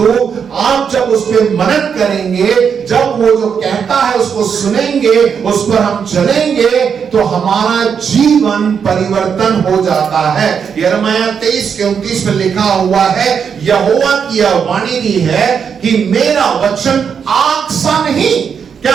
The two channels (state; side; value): quieter; left; 6.9 dB